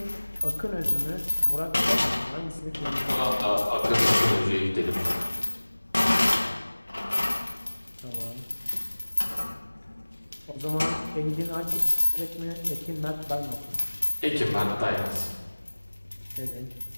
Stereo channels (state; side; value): inverted; both; correlation -1.00